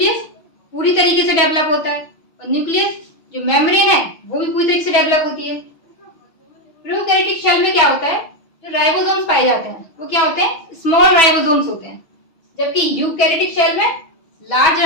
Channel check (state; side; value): late; right; 6.1 ms